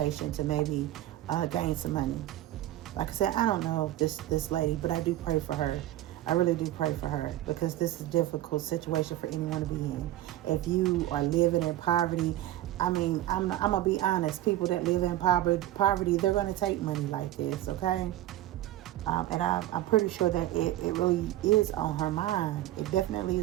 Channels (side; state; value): left; quieter; 14.5 dB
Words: to maybe gain some money. Like I said, I don't know this lady, but I do pray for her. I really do pray for her because this is a difficult situation for anyone to be in. If you are living in poverty, I mean, I'm going to be honest. People that live in poverty, they're going to take money like this, okay? And I'm pretty sure that it really is on her mind. It definitely